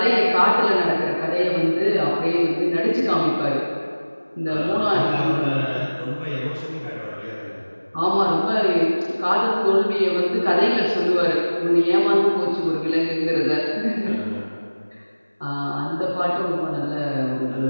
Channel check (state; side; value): inverted; both; correlation -1.00